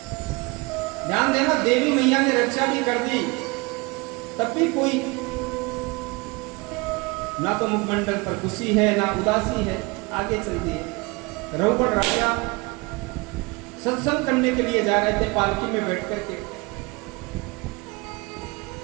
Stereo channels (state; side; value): quieter; left; 26.2 dB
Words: ध्यान देना, देवी मैया ने रक्षा भी कर दी, तब भी कोई ना तो मुखमंडल पर खुशी है ना उदासी है। आगे चल दिए। रघुपत राजा सत्संग करने के लिए जा रहे थे पालकी में बैठ करके।